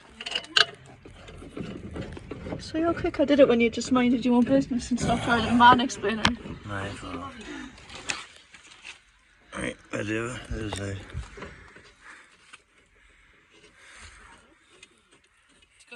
So how quick I did it when you just minded your own business and stopped trying to man-explaining. Right, right, I do. There's a... Let's go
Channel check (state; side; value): identical; both; correlation 1.00